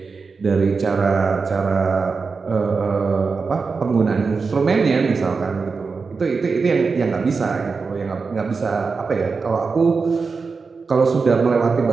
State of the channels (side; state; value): left; quieter; 4.7 dB